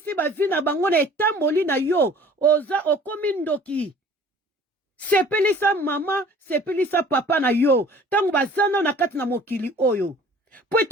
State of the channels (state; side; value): normal; both; correlation 0.49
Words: bavi na bango na etamboli na yo oza okomi ndoki. Sepelisa mama, sepelisa papa na yo. Tango bazana na kati na mokili oyo. Po